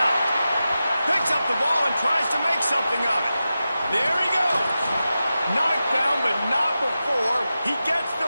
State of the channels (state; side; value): inverted; both; correlation -0.92